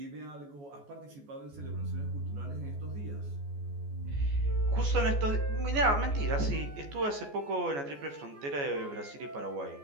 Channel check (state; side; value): late; left; 14 ms